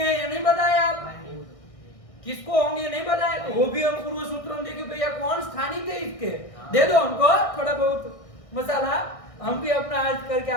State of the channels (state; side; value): late; right; 1.6 ms